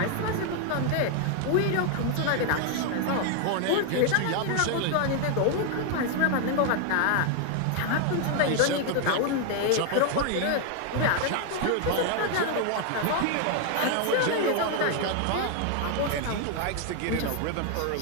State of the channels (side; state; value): both; different; correlation 0.00